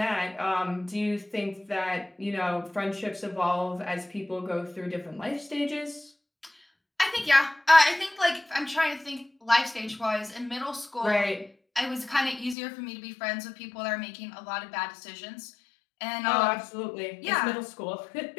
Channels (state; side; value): drops out; right; at 12.6 s